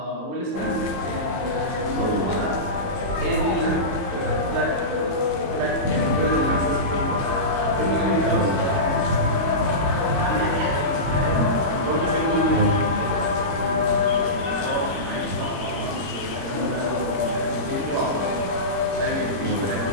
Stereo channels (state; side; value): late; left; 21 ms